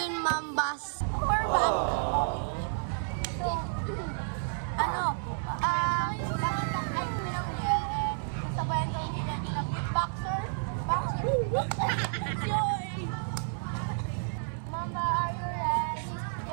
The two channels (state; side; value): silent; left; digital silence